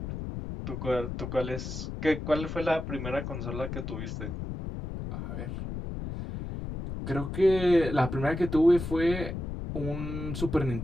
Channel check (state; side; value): noise; left; rumble, 6 dB below the sound